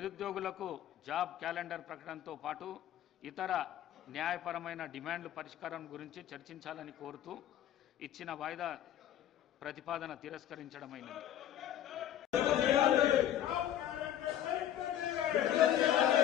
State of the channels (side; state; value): right; quieter; 11.2 dB